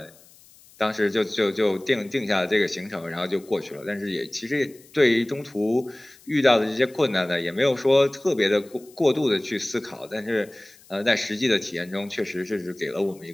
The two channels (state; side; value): noise; left; hiss, 26 dB below the sound